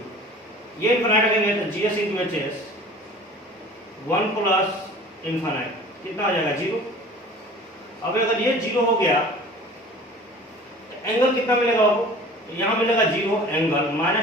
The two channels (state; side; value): normal; both; correlation 0.44